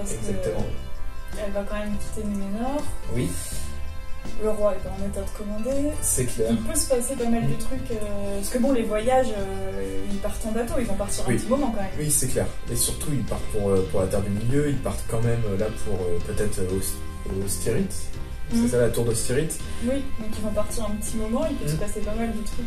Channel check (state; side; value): identical; both; correlation 1.00